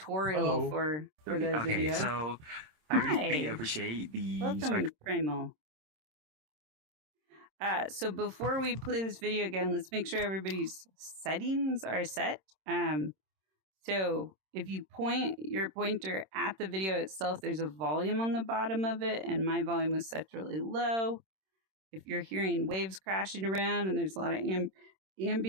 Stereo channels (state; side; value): late; left; 26 ms